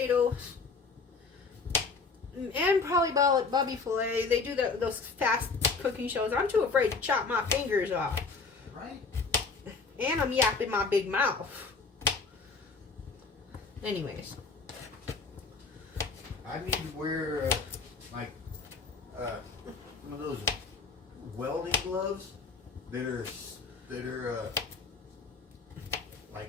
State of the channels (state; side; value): quieter; right; 4.5 dB